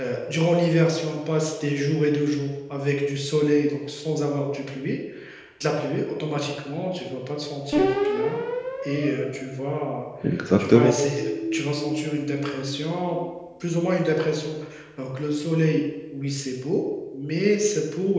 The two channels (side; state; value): both; identical; correlation 1.00